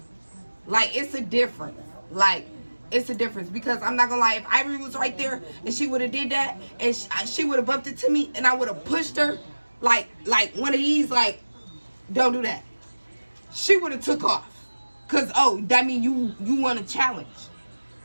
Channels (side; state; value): both; inverted; correlation -1.00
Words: Like, it's a difference. Like, it's a difference because I'm not gonna lie, if Ivory was right there and she would have did that and she would have bumped it to me and I would have pushed her like one of these, like, don't do that, she would have took off because, oh, that mean you want a challenge,